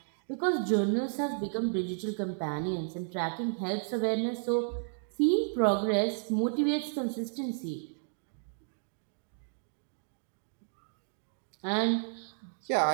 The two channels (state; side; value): silent; left; digital silence